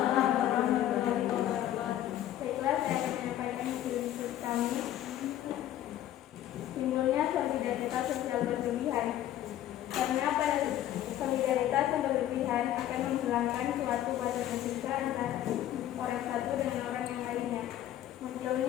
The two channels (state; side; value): quieter; right; 12.4 dB